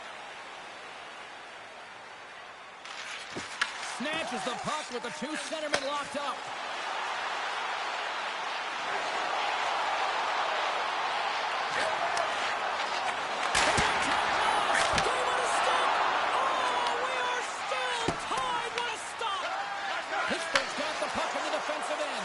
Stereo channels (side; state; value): both; identical; correlation 1.00